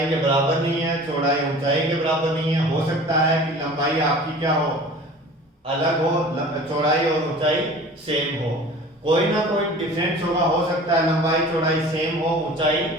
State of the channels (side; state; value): both; normal; correlation 0.42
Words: के बराबर नहीं है, चौड़ाई ऊंचाई के बराबर नहीं है। हो सकता है कि लंबाई आपकी क्या हो, अलग हो, चौड़ाई और ऊंचाई सेम हो। कोई ना कोई डिफरेंस होगा, हो सकता है लंबाई चौड़ाई सेम हो, ऊंचाई